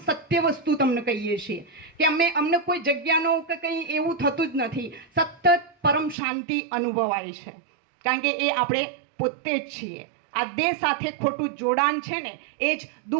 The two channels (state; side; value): drops out; left; at 6.2 s